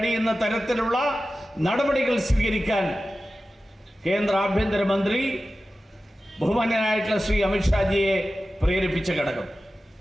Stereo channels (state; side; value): normal; both; correlation 0.94